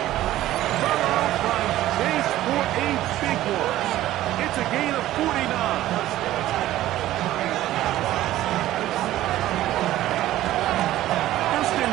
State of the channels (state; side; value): quieter; left; 14.5 dB